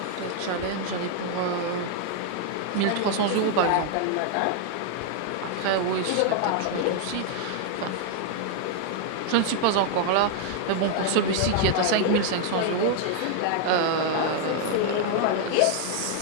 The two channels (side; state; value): both; different; correlation 0.00